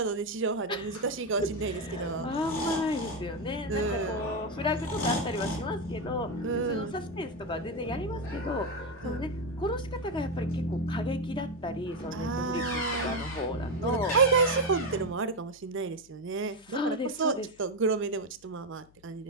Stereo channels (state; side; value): noise; left; hum, 29 dB below the sound